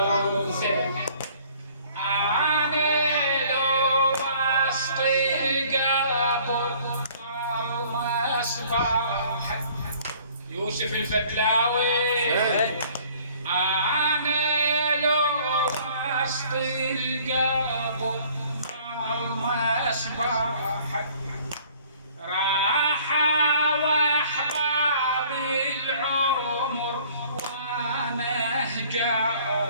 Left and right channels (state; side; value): inverted; both; correlation -0.55